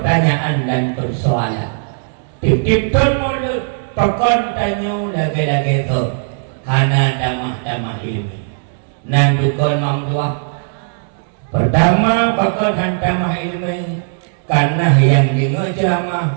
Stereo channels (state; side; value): silent; left; digital silence